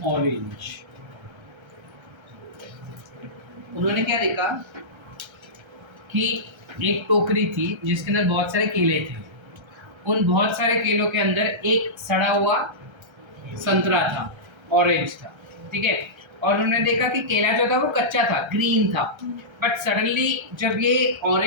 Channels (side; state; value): left; late; 1.3 ms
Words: orange. उन्होंने क्या देखा कि एक टोकरी थी जिसके अंदर बहुत सारे केले थे। उन बहुत सारे केलों के अंदर एक सड़ा हुआ संतरा था, ऑरेंज था, ठीक है। और उन्होंने देखा कि केला जो था वो कच्चा था, ग्रीन था, बट सडनली जब ये